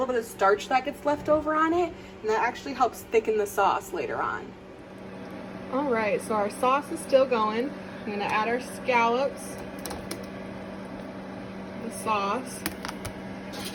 bit of starch that gets left over on it, and that actually helps thicken the sauce later on. All right, so our sauce is still going. I'm gonna add our scallops, the sauce.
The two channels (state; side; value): identical; both; correlation 1.00